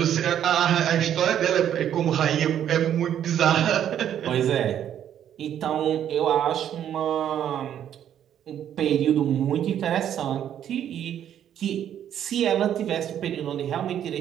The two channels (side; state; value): left; quieter; 10.1 dB